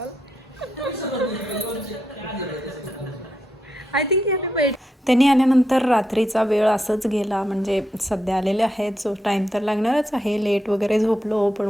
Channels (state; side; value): normal; both; correlation 0.83